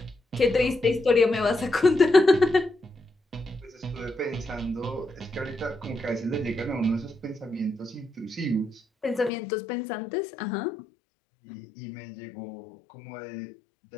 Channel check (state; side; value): drops out; right; at 9.3 s